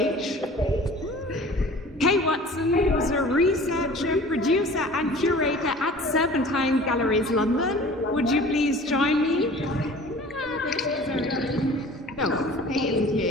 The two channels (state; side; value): normal; both; correlation 0.44